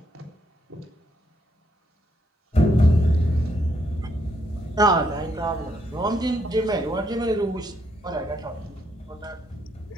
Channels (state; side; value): normal; both; correlation 0.75